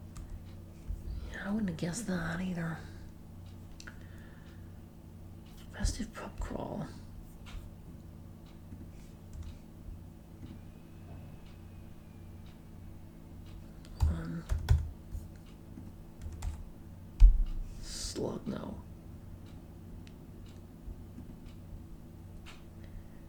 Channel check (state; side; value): identical; both; correlation 1.00